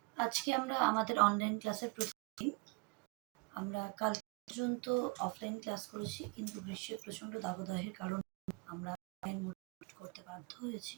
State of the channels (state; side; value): quieter; left; 28.0 dB